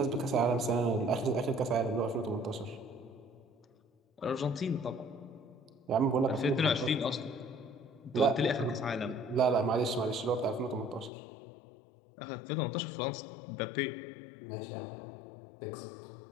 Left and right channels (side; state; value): right; drops out; at 11.1 s